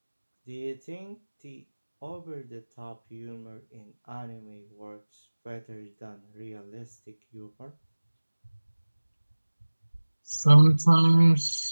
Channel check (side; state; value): both; inverted; correlation -1.00